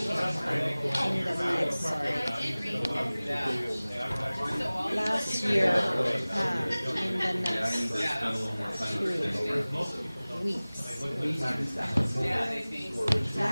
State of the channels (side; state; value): both; inverted; correlation -0.99